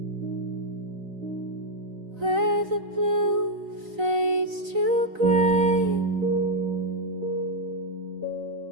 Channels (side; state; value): left; late; 3.9 ms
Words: where the blue fades to gray.